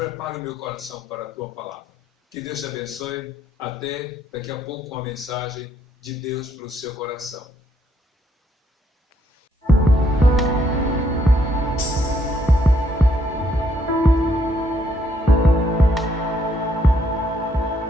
o meu coração para a tua palavra. Que Deus te abençoe. Até daqui a pouco com a mensagem de Deus para o seu coração.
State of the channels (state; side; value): normal; both; correlation 0.71